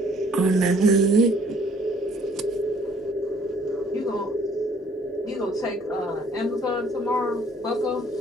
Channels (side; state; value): both; normal; correlation 0.59